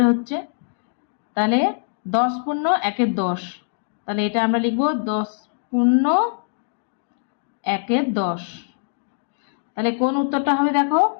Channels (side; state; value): right; silent; 64 dB below the other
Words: হচ্ছে। তাহলে 10 পূর্ণ 1-এর 10, তাহলে এটা আমরা লিখব 10 পূর্ণ 1-এর 10। তাহলে কোন উত্তরটা হবে? দেখো